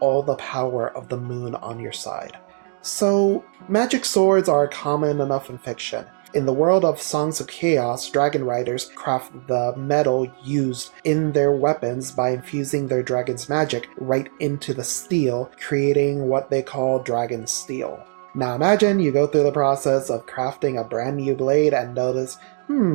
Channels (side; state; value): left; silent; 64 dB below the other